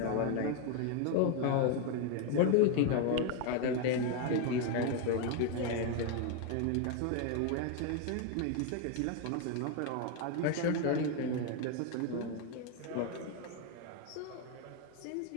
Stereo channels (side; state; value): both; different; correlation 0.01